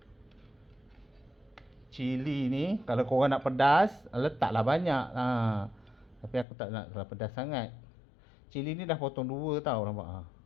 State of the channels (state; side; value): drops out; right; at 6.5 s